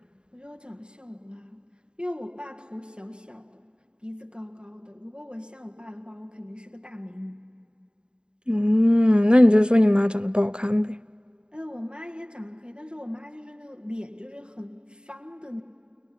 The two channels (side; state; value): left; late; 0.049 ms